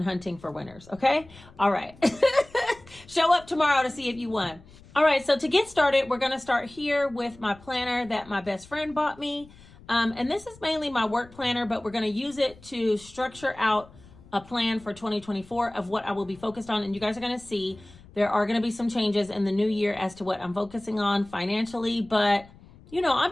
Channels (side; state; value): left; noise; rumble, 23 dB below the sound